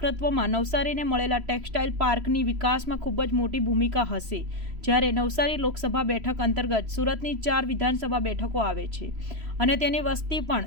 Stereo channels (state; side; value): late; left; 3.0 ms